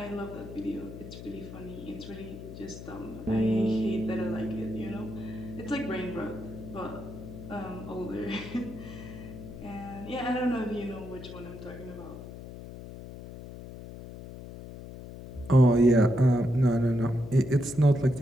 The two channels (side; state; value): left; noise; hum, 12 dB below the sound